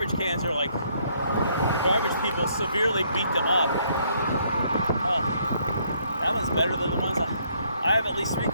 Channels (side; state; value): both; inverted; correlation -0.69